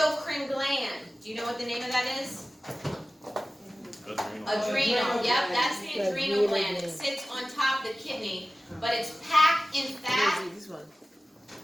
gland. Do you know what the name of that is? Adrenal. Yep, that's the adrenal gland. It sits on top of the kidney, but it's packed in fat.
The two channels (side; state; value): both; normal; correlation 0.96